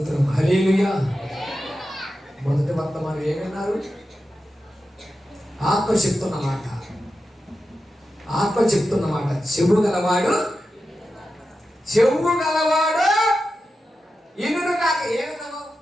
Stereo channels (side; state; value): both; normal; correlation 0.91